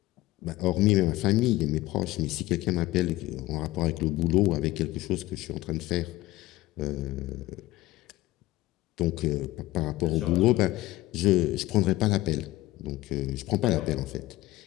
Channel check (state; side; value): quieter; right; 17.7 dB